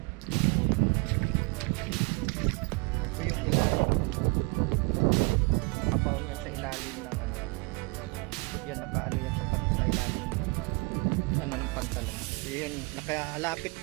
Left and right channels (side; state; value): left; quieter; 29.9 dB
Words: Ito yung ilalim. Abaw niya sa ilalim ng ano. Yan, nakaano yan sa ilalim ng pantalon. Yan, nakalapit